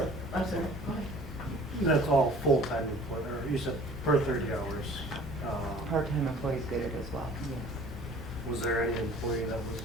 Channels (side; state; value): both; normal; correlation 0.49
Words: I'm sorry, go ahead. That's all full-time employee, or you said per 30 hours. Part-time employees get it as well. Yes. Was there any employee that